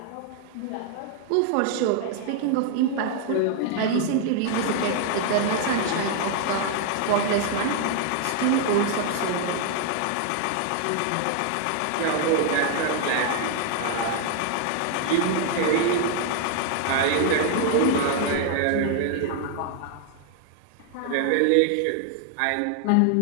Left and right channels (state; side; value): different; both; correlation 0.00